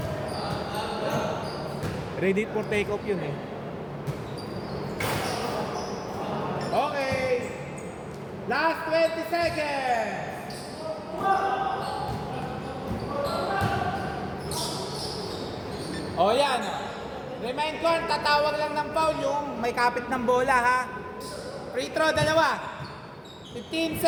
Ready for take off yun eh. Okay. Last 20 seconds. O yan. Remind ko, tatawag lang ng foul yung may kapit ng bola ha. Free throw, dalawa. 15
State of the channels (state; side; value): identical; both; correlation 1.00